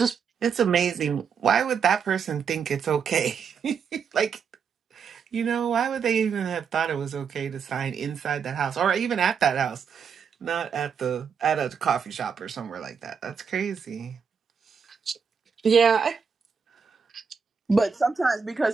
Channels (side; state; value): left; quieter; 6.4 dB